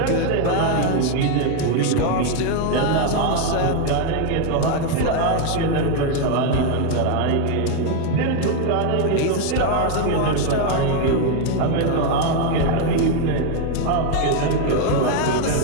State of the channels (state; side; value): different; both; correlation 0.01